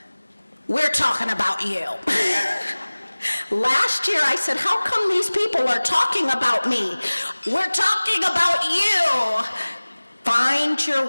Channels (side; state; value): both; inverted; correlation -1.00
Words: we're talking about you. Last year I said, how come these people are talking about me? We're talking about you. Find